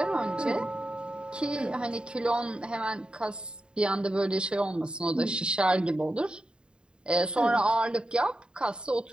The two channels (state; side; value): late; left; 0.050 ms